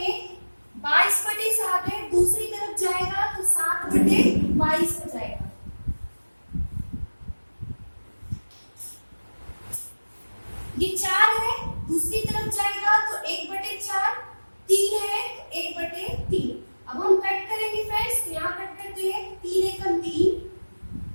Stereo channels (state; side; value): inverted; both; correlation -1.00